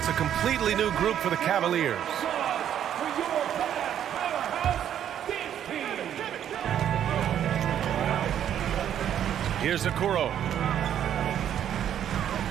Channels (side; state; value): left; quieter; 10.0 dB